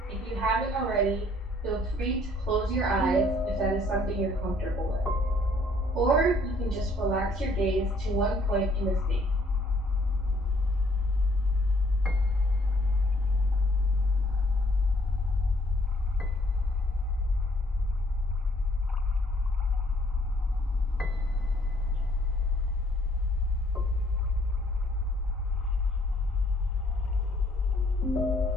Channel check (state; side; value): normal; both; correlation 0.63